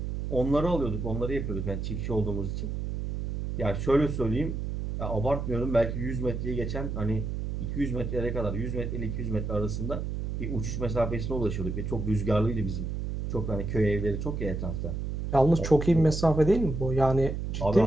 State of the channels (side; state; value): right; noise; hum, 3 dB below the sound